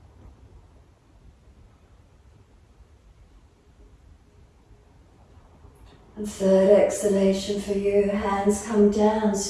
And third exhalation for you. Hands come down,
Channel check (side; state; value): both; identical; correlation 1.00